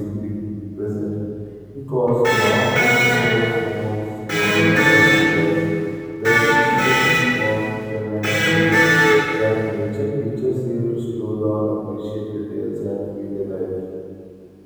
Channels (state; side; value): identical; both; correlation 1.00